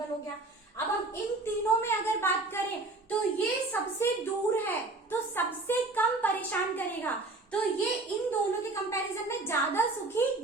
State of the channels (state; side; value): quieter; left; 3.2 dB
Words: हो गया। अब हम इन तीनों में अगर बात करें, तो ये सबसे दूर है, तो सबसे कम परेशान करेगा, तो ये इन दोनों के कंपैरिजन में ज्यादा सुखी,